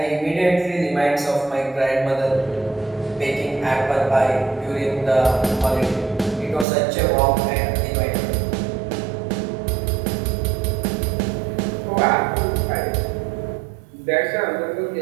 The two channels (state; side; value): drops out; left; at 6.7 s